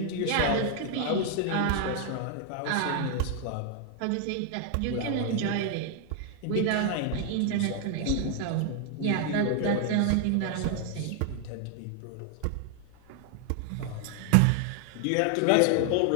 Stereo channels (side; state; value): both; different; correlation 0.00